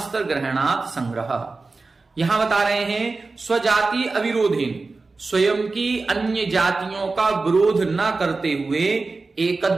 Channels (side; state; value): left; quieter; 3.8 dB